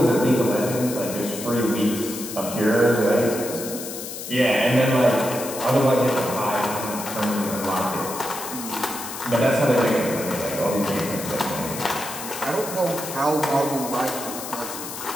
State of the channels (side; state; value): left; noise; hiss, 9 dB below the sound